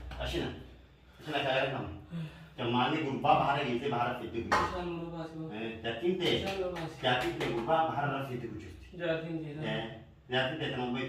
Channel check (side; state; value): both; identical; correlation 1.00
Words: Asina. Asina kaya kamu. Jamani gurba bahar gitu bahar itu. Insyaallah basu. Jatim te. Jatim te gurba bahar itu kucing. Jatim te. Jatim te temu